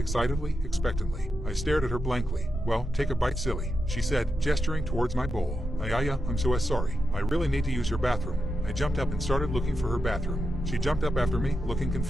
expectantly. I stared at her blankly. "Well, take a bite, silly," she said, gesturing towards my bowl. I'm so sorry. I really need to use your bathroom." I jumped up and started looking for her bathroom. She jumped up after me, looking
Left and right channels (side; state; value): both; normal; correlation 0.87